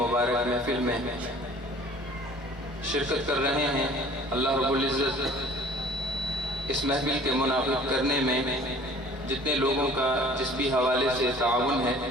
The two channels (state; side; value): normal; both; correlation 0.50